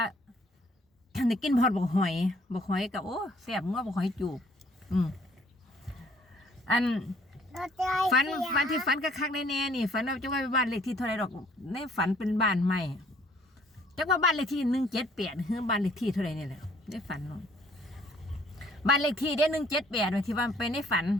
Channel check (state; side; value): normal; both; correlation 0.60